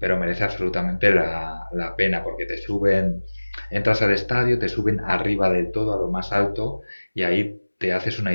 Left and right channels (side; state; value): both; inverted; correlation -1.00